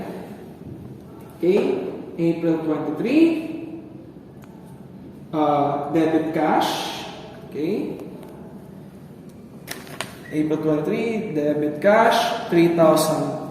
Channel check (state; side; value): identical; both; correlation 1.00